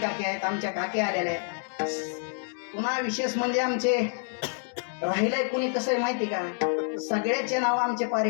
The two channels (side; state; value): right; silent; 59 dB below the other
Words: काकी आहेत, आमच्या काकी आलेल्या आहेत. पुन्हा विशेष म्हणजे आमचे राहिलंय कुणी कसं आहे माहिती का, सगळ्याचे नाव आमचे